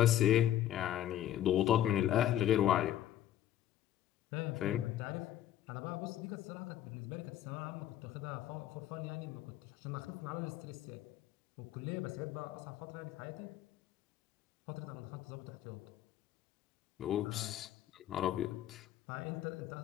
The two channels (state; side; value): quieter; right; 12.1 dB